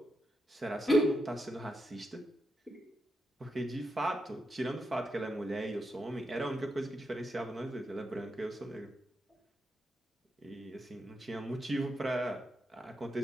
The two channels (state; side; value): normal; both; correlation 0.84